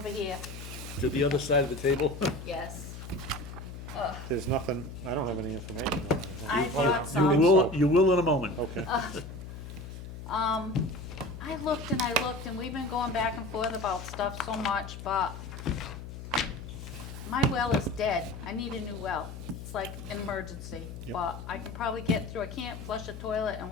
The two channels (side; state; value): left; noise; hum, 10 dB below the sound